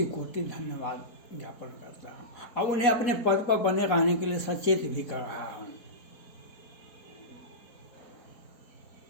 कोटि धन्यवाद ज्ञापन करता हूँ और उन्हें अपने पद पर बने रहने के लिए सचेत भी कर रहा हूँ।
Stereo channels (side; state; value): right; late; 4.1 ms